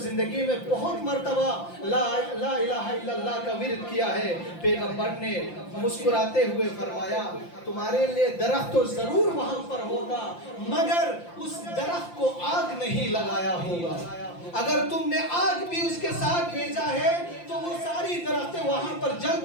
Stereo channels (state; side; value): late; right; 5.8 ms